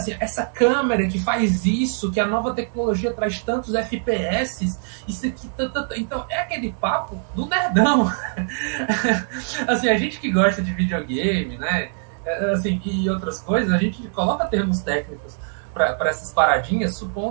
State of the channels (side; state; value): left; silent; 63 dB below the other